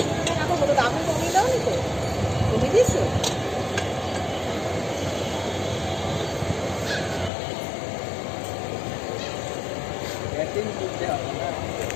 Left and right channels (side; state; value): right; drops out; at 7.3 s